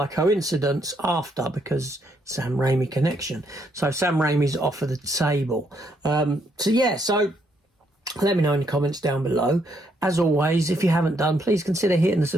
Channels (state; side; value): normal; both; correlation 0.74